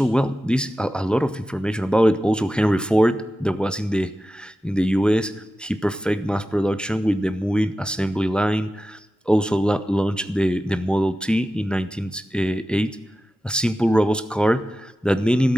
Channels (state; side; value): normal; both; correlation 0.93